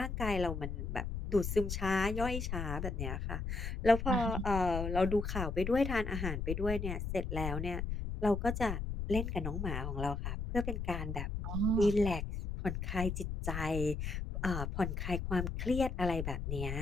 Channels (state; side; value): noise; left; rumble, 4 dB below the sound